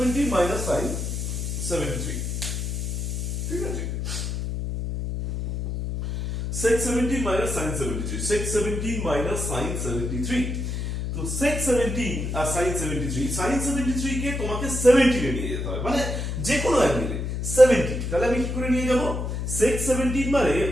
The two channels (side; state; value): left; noise; hum, 3 dB below the sound